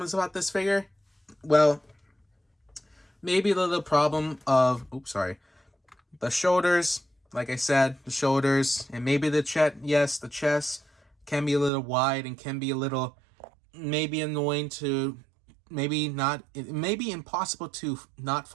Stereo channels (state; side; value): drops out; left; at 11.7 s